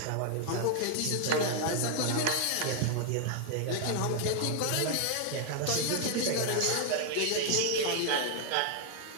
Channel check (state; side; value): different; both; correlation 0.00